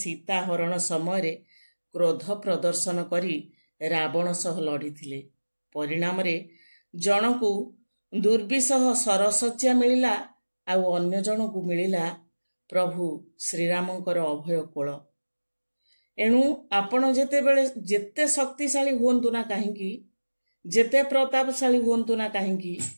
ହରଣ ସମୟରେ କ୍ରୋଧ ପ୍ରଦର୍ଶନ କରି ରାବଣ ସହ ଲଢ଼ିଥିଲେ। ପରିଣାମରେ ଜଣକୁ ଦୁର୍ବିସହ ସରଶଯ୍ୟା ମିଳିଲା, ଆଉ ଅନ୍ୟ ଜଣକୁ ମିଳିଲା ପ୍ରଭୁ ଶ୍ରୀରାମଙ୍କର ଅଭୟ କୋଳ। ଏଣୁ ଆପଣ ଯେତେ ଶକ୍ତିଶାଳୀ ହୁଅନ୍ତୁ ନା କାହିଁକି, ଯେତେ ପ୍ରତାପଶାଳୀ ହୁଅନ୍ତୁ ନା କାହିଁକି,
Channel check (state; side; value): inverted; both; correlation -1.00